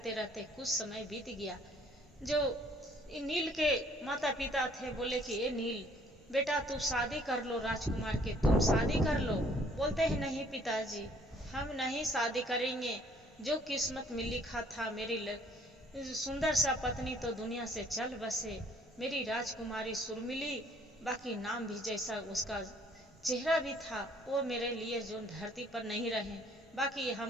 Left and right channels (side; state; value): both; normal; correlation 0.60